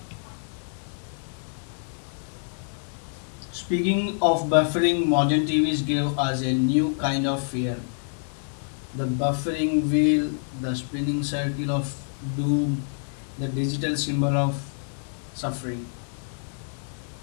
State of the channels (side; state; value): right; silent; 60 dB below the other